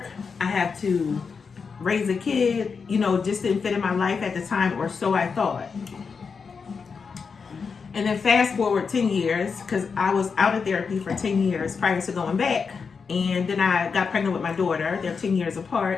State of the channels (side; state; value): right; quieter; 5.5 dB